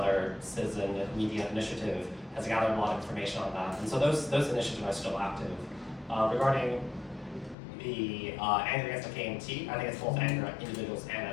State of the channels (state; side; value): drops out; right; at 7.6 s